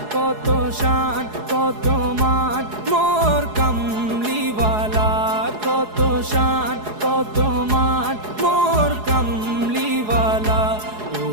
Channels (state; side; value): late; left; 4.8 ms